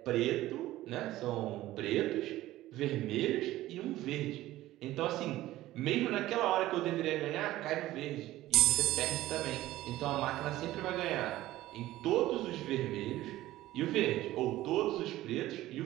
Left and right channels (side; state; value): left; quieter; 15.7 dB